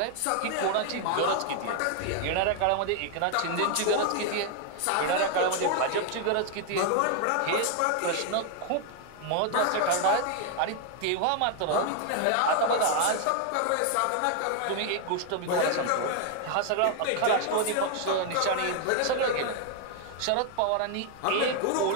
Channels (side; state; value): both; different; correlation 0.00